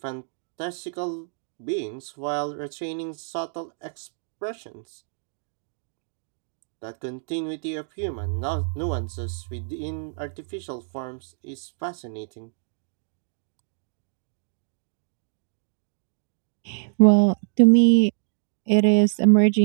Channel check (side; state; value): left; silent; digital silence